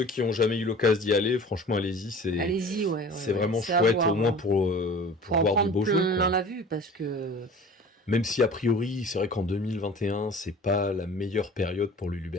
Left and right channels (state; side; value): normal; both; correlation 0.42